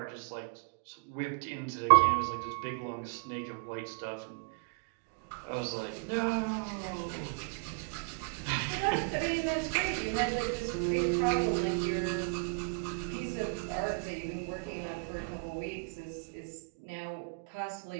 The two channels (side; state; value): left; quieter; 34.6 dB